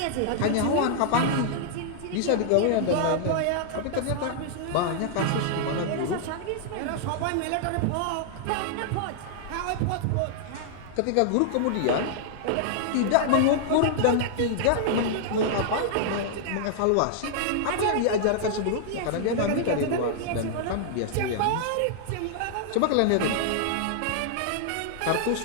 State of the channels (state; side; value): different; both; correlation -0.01